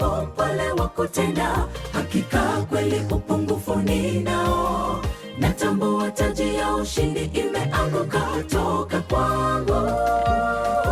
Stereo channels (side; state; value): both; identical; correlation 1.00